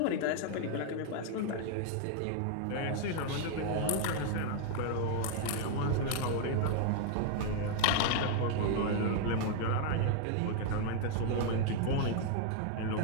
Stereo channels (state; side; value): different; both; correlation 0.00